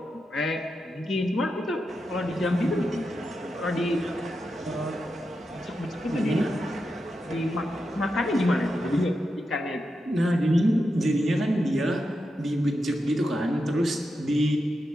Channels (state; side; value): normal; both; correlation 0.88